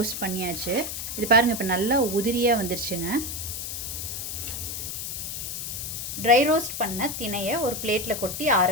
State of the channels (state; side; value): noise; left; hiss, 5 dB below the sound